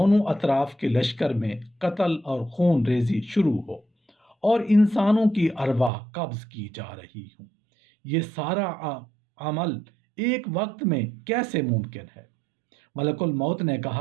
اطراف کے لشکر میں قتل اور خون ریزی شروع ہو اور انسانوں کی ارواح قبض کی جا رہی ہوں، یہ سارا عمل ایک وقت میں کیسے ممکن ہے؟ ملک الموت نے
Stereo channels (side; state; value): left; drops out; at 5.9 s